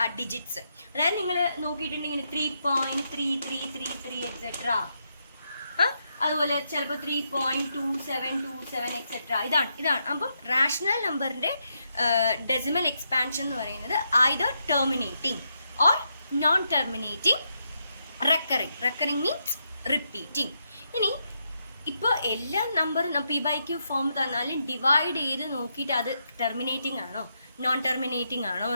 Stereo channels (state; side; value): inverted; both; correlation -0.81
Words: ആ ഡിജിറ്റ്സ്. അതായത് നിങ്ങൾ നോക്കിയിട്ടുണ്ടെങ്കിൽ 3.3333 എക്സെട്ര, അതുപോലെ ചിലപ്പോൾ 3.2727 എക്സെട്ര. ഇതാണ് അപ്പം റാഷണൽ നമ്പറിന്റെ ഡെസിമൽ എക്സ്പാൻഷൻ എന്ന് പറയുന്നത് either terminating or non-terminating recurring means repeating. ഇനി ഇപ്പോൾ എല്ലാ നമ്പറും p/q ഫോം തന്നാലും ഡിവൈഡ് ചെയ്ത് നോക്കിയിട്ട് അത് ടെർമിനേറ്റിംഗ് ആണോ നോൺ ടെർമിനേറ്റിംഗ് ആണോ